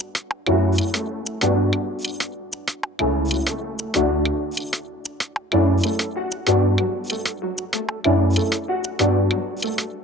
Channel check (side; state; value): both; normal; correlation 0.56